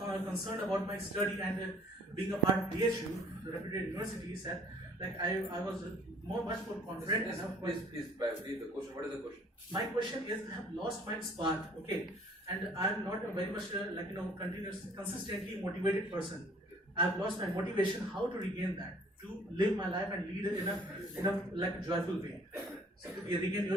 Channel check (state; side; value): normal; both; correlation 0.56